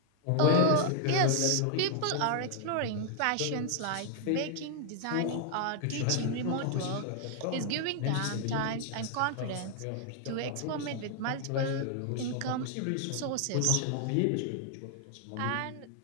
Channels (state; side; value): different; both; correlation 0.00